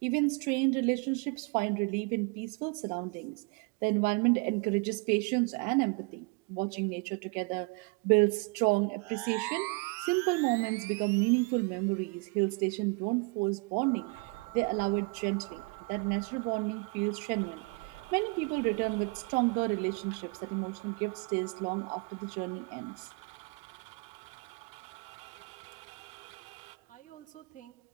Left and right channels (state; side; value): quieter; left; 31.2 dB